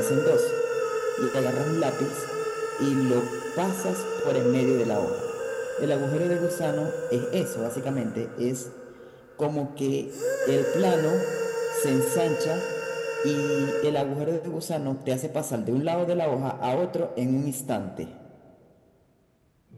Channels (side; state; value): both; identical; correlation 1.00